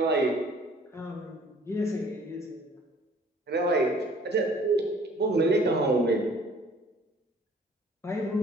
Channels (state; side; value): normal; both; correlation 0.54